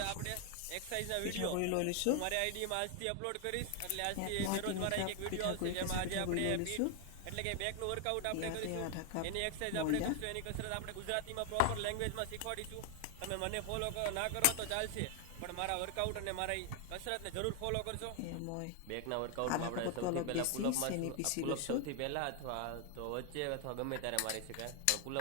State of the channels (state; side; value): different; both; correlation 0.00